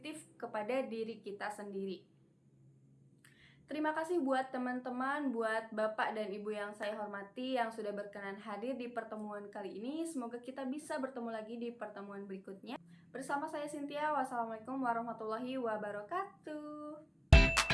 kepada diri kita sendiri. Terima kasih buat teman-teman, buat Bapak dan Ibu yang saya hormati yang sudah berkenan hadir di pertemuan kali ini. Semoga kita bisa bertemu lagi di pertemuan berikutnya. Bersama saya Cynthia, wassalamualaikum warahmatullahi wabarakatuh.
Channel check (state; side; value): identical; both; correlation 1.00